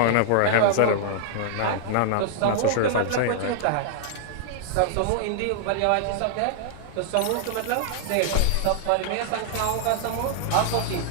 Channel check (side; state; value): both; different; correlation -0.01